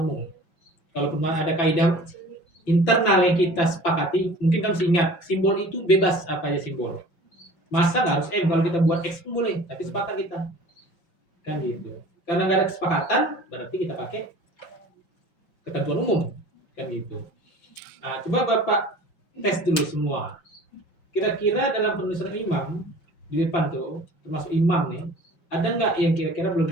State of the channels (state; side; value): late; right; 5.5 ms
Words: Kalaupun ada kaidah internal yang kita sepakati, mungkin kita mesti ingat simbol itu bebas apa aja simbol. Masa nggak harus M, kalau kita buat X pun boleh, tapi sepakat kita kan gitu. Karena nggak ada kesepakatan, berarti kita pakai ketentuan umum kan gitu. Nah, coba Bapak tes dulu semua. Kira-kira dalam penulisan imam di depan tuh, termasuk imam nih, ada nggak yang kira-kira